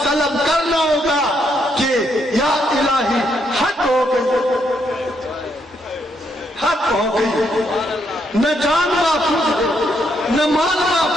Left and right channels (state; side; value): normal; both; correlation 0.75